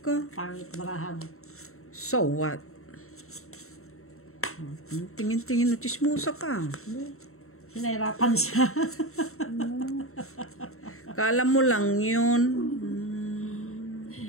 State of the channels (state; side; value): late; right; 0.63 ms